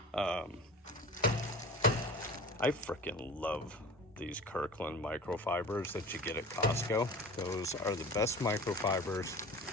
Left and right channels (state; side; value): normal; both; correlation 0.38